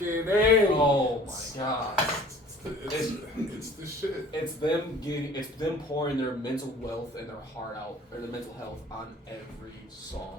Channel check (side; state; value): both; normal; correlation 0.49